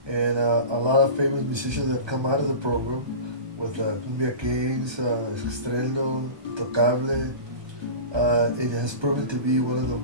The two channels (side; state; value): left; late; 1.2 ms